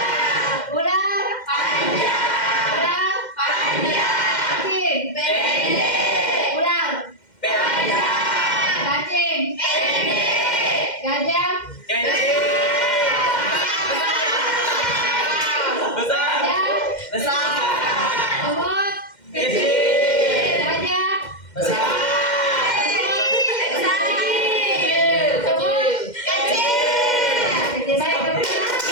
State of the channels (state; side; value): late; right; 2.1 ms